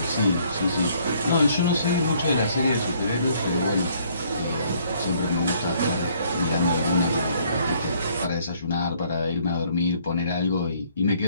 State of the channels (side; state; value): both; inverted; correlation -0.64